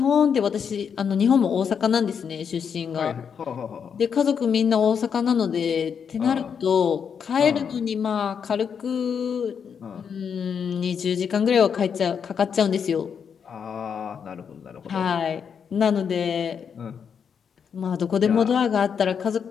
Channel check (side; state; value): right; quieter; 7.0 dB